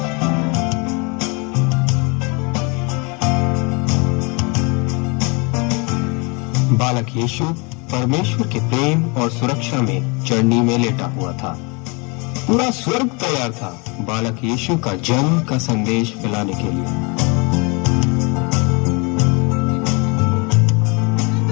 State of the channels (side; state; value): right; quieter; 30.6 dB